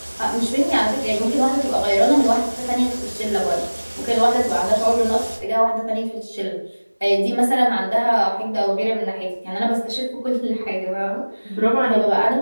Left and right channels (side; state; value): both; inverted; correlation -1.00